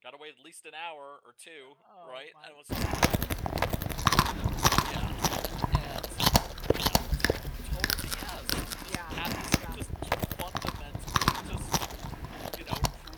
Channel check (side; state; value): both; identical; correlation 1.00